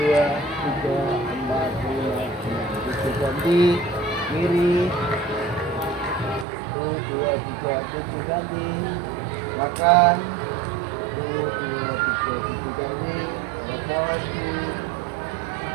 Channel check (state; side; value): drops out; left; at 6.5 s